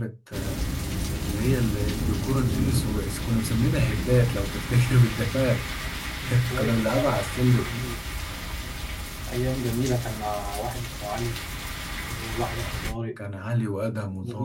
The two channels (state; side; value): identical; both; correlation 1.00